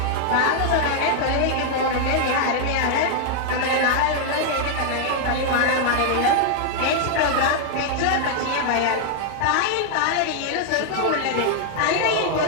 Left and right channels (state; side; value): different; both; correlation -0.01